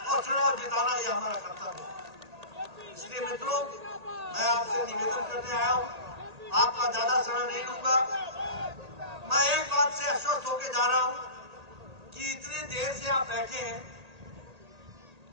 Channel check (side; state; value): left; late; 1.8 ms